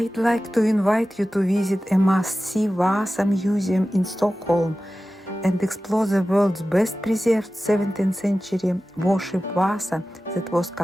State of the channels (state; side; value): normal; both; correlation 0.95